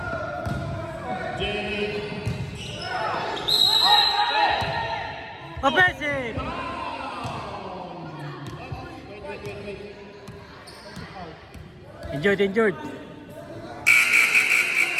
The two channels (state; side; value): identical; both; correlation 1.00